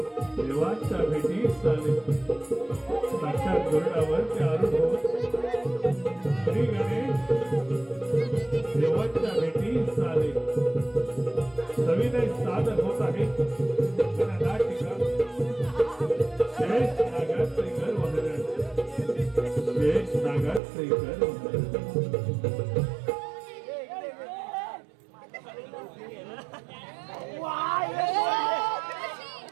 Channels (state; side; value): drops out; left; at 20.6 s